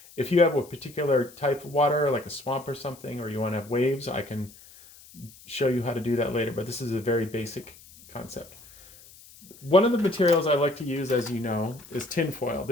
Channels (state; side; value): noise; left; hiss, 22 dB below the sound